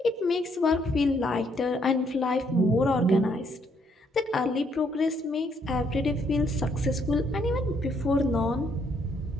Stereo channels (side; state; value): both; normal; correlation 0.71